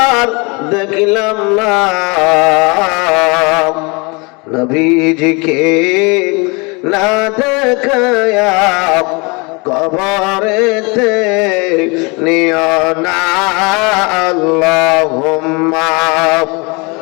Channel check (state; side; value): quieter; right; 29.3 dB